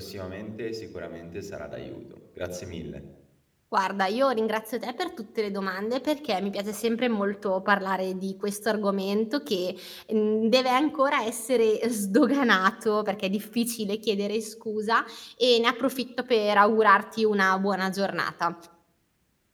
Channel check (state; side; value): identical; both; correlation 1.00